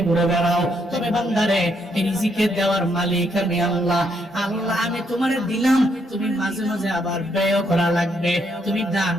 ঘুরে বেড়াও, তবে বান্দারে এই রিজিকের দেওয়ার মালিক আমি আল্লাহ। আল্লাহ আমি তোমারে দিলাম, তুমি মাঝে মাঝে আবার ব্যয় করা লাগবে, তুমি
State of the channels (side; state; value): both; normal; correlation 0.75